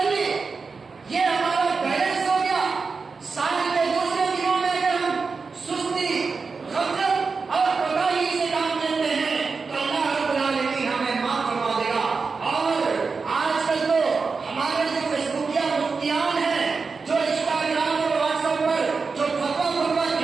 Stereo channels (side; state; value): left; quieter; 4.7 dB